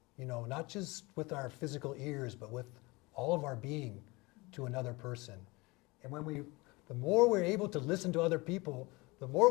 not just with our physical ears, but with all of our being to another person. And the more we're able to listen to other people, the more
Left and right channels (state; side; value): quieter; right; 24.2 dB